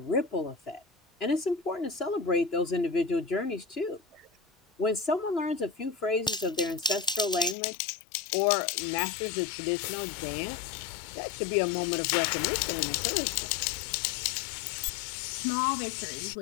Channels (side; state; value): right; drops out; at 7.6 s